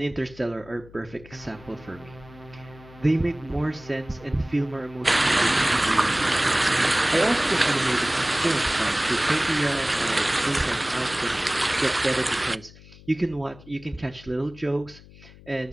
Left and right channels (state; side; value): noise; left; hum, 21 dB below the sound